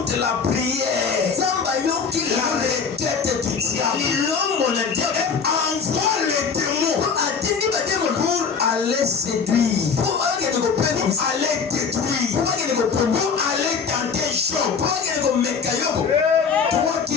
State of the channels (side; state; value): right; quieter; 5.7 dB